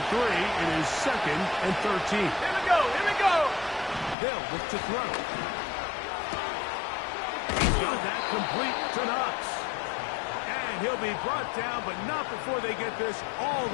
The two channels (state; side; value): drops out; right; at 4.2 s